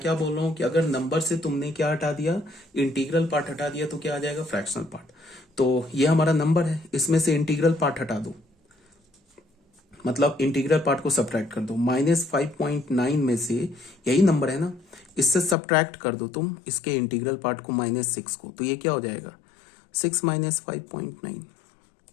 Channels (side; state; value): right; drops out; at 15.6 s